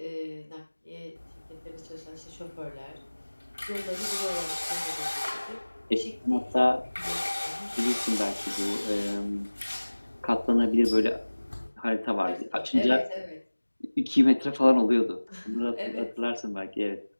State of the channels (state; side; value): inverted; both; correlation -1.00